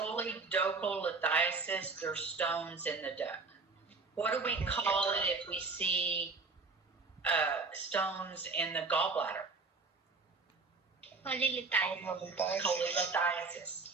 lithiasis, there's stones in the duct. What do we call it if we see stones in the gallbladder? Cholelithiasis. Cholelithiasis.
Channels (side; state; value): left; quieter; 4.0 dB